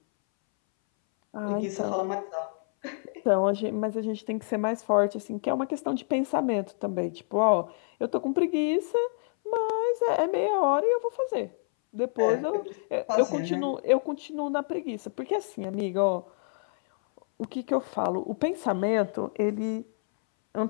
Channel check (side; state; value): right; silent; 60 dB below the other